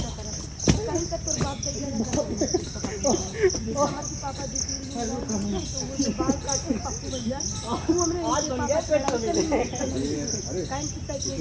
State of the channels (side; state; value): both; identical; correlation 1.00